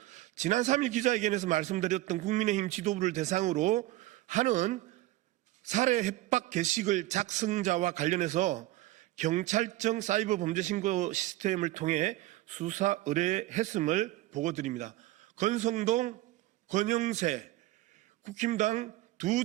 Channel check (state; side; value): quieter; left; 17.1 dB